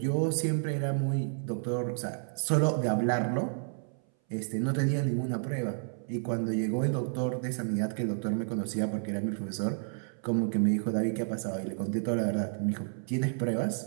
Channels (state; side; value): silent; left; 57 dB below the other